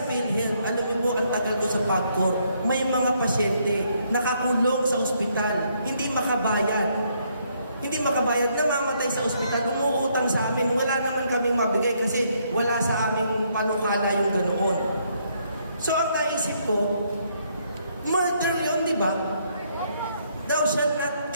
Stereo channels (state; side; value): inverted; both; correlation -0.71